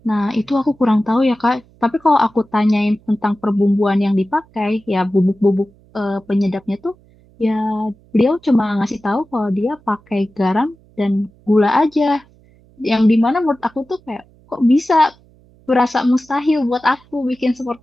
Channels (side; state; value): right; noise; hum, 29 dB below the sound